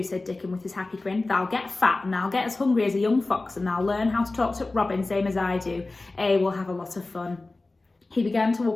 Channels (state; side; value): quieter; right; 3.2 dB